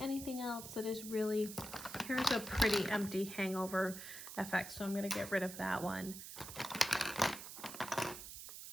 else that is really, here's a pretty empty hangover effect, so I'm gonna get rid of that one.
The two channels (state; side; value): noise; right; hiss, 10 dB below the sound